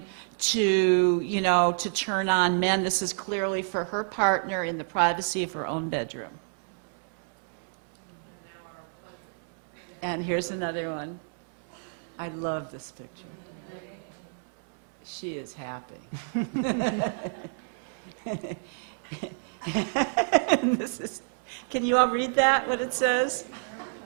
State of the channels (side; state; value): left; silent; 59 dB below the other